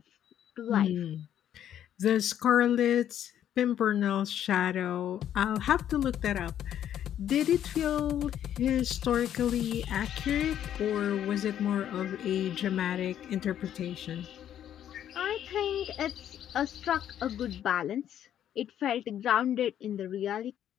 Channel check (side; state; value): right; quieter; 10.5 dB